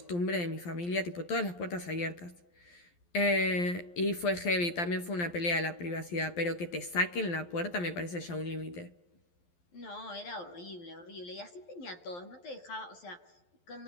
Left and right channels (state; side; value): late; right; 11 ms